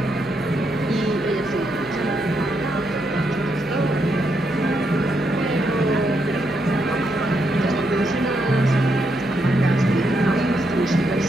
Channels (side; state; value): left; noise; hum, 20 dB below the sound